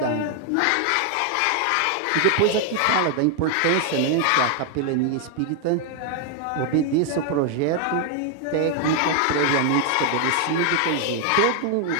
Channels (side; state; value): both; different; correlation 0.00